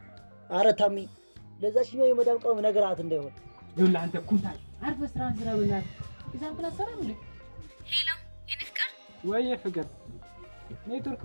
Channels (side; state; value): both; inverted; correlation -1.00